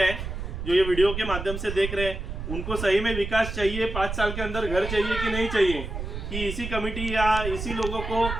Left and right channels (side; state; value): right; noise; rumble, 6 dB below the sound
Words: जो ये वीडियो के माध्यम से देख रहे हैं, उनको सही में विकास चाहिए, 5 साल के अंदर घर चाहिए कि नहीं चाहिए, कि इसी कमेटी या इसी लोगों को,